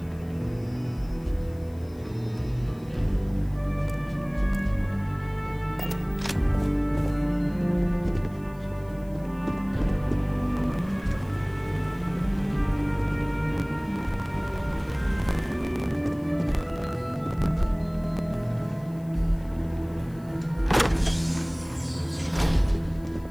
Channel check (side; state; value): left; noise; hiss, 28 dB below the sound